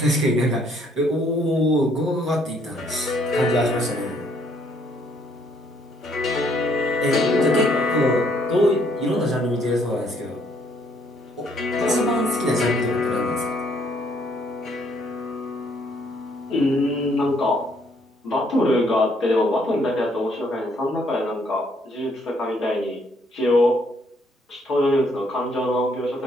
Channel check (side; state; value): both; normal; correlation 0.67